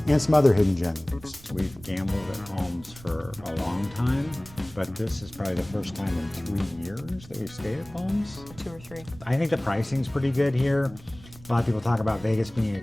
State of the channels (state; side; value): noise; right; rumble, 20 dB below the sound